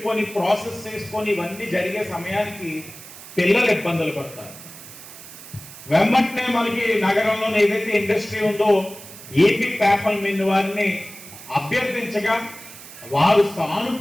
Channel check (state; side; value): noise; right; hiss, 16 dB below the sound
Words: ప్రాసెస్ చేసుకొని ఇవన్నీ జరిగే సమయానికి పిల్లలు ఇబ్బందులు పడతారు. వెంబటనే మనకి నగరంలో ఏదైతే ఇండస్ట్రీ ఉందో ఏపీ పేపర్ మిల్ వారిని అభ్యర్థించగా వారు